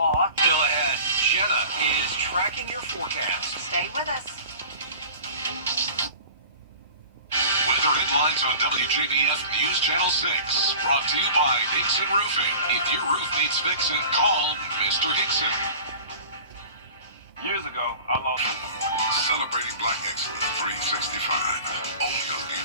Still ahead, Jenna is tracking your forecast. Stay with us. Weather headlines on WJBF News Channel 6. Brought to you by Hickson Roofing. If your roof needs fixing, call Mr. Hickson. Years ago, I lost. Celebrating Black Excellence 365. Only on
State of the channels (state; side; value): inverted; both; correlation -0.41